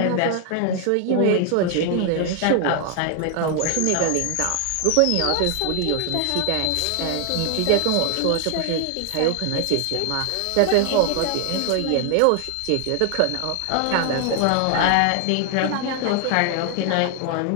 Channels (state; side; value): different; both; correlation 0.00